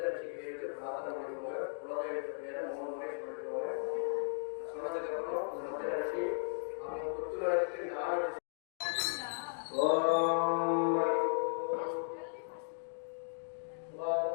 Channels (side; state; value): right; silent; digital silence